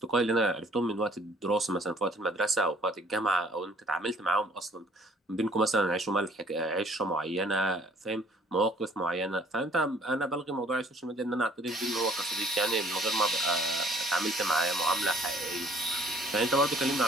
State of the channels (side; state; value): both; normal; correlation 0.58